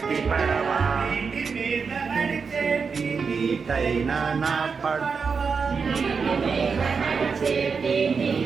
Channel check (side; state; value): left; quieter; 5.4 dB